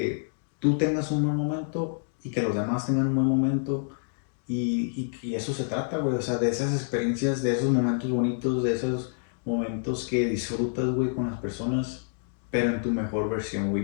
tú tengas un buen momento y que los demás tengan un buen momento. Y eso se trata, güey, o sea, de esas experiencias, de esos momentos bonitos, de esos momentos que disfrutas, güey, con las personas, pero en tu mejor versión,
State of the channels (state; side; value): silent; right; digital silence